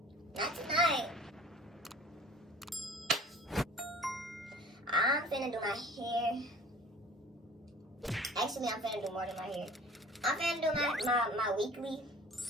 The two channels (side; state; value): both; normal; correlation 0.47